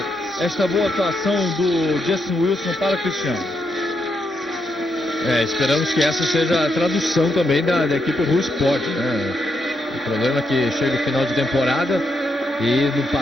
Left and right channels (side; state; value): both; normal; correlation 0.80